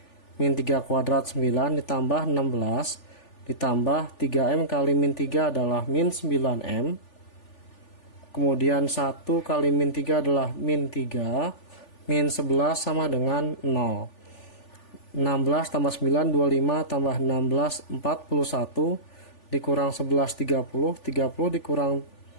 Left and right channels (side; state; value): right; late; 3.4 ms